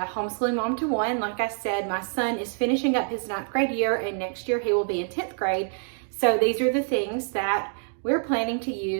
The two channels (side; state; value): left; silent; 61 dB below the other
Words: homeschooling mom to one. Like I said, my son is finishing up his 9th grade year and next year he will be in 10th grade. So these are the things that we're planning to